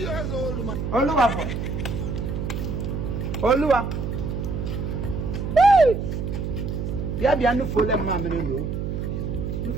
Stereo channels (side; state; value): right; noise; hum, 3 dB below the sound